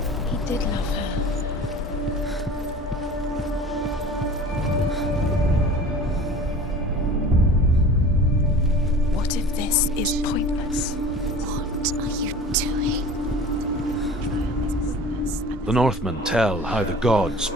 He did love her. What if this is pointless? What are you doing? The Northmen tell how the gods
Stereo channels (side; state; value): both; normal; correlation 0.41